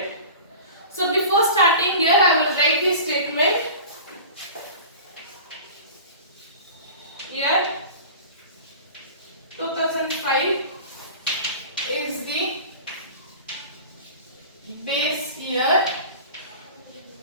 So before starting here I will write the statement. Here 2005 is the base year.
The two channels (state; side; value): inverted; both; correlation -0.37